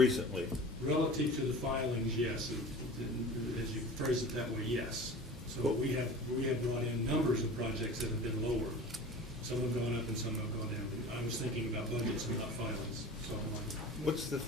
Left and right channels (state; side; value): normal; both; correlation 0.38